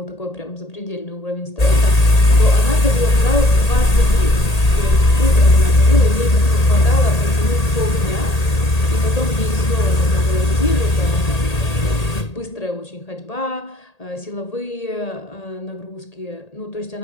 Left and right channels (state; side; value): late; right; 1.8 ms